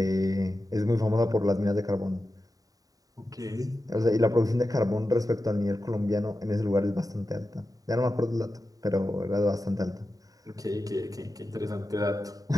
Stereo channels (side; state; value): left; late; 0.18 ms